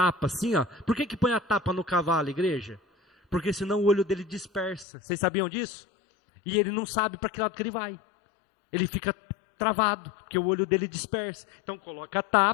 assim, ó. Por que põe a tapa no cavalo, igreja? Porque senão o olho dele dispersa. Vocês sabiam disso? E ele não sabe para que lado que ele vai. Ele fica travado, porque o olho dele dispersa. Então coloca a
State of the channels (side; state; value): right; drops out; at 4.9 s